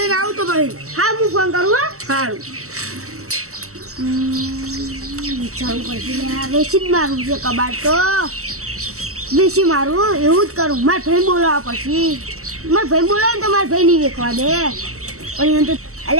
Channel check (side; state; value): left; late; 0.64 ms